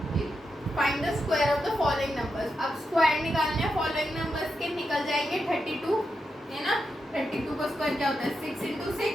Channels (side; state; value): both; normal; correlation 0.86